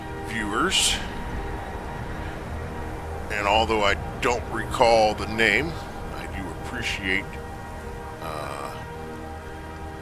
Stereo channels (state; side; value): identical; both; correlation 1.00